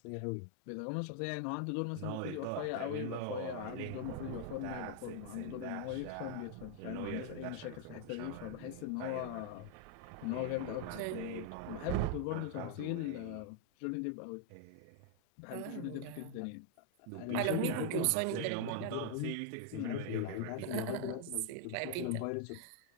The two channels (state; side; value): different; both; correlation 0.00